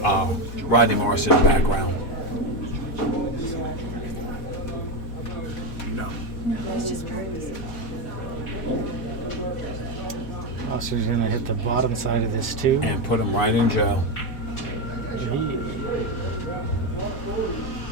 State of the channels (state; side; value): late; right; 4.1 ms